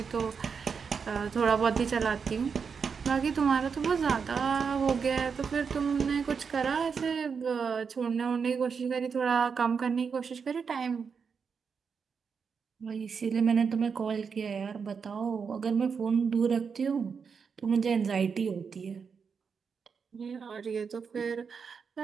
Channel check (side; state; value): left; quieter; 5.9 dB